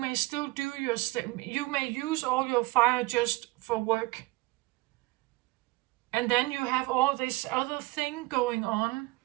still do you may use all your fire just for work. And then you have all this other thing going on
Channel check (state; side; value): quieter; left; 22.2 dB